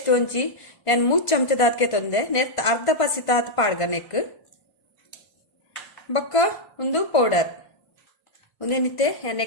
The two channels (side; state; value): right; late; 1.5 ms